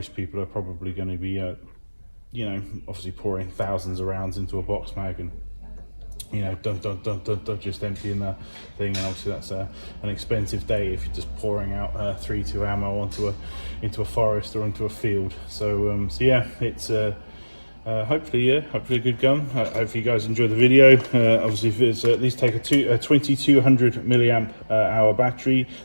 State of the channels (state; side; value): inverted; both; correlation -1.00